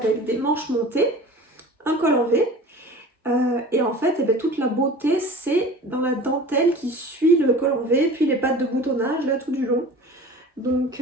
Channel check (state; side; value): normal; both; correlation 0.40